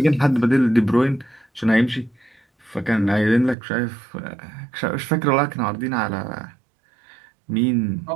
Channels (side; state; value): left; drops out; at 3.6 s